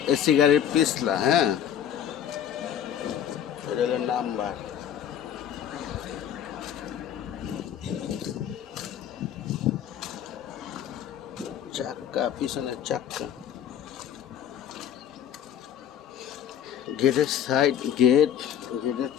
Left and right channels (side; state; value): right; quieter; 9.6 dB